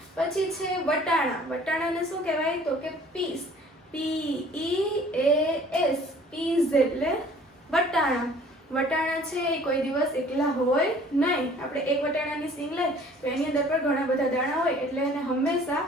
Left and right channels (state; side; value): normal; both; correlation 0.52